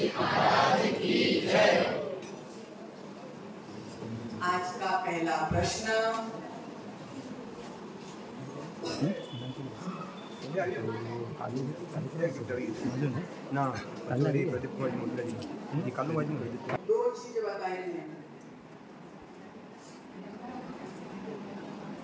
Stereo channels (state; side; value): identical; both; correlation 1.00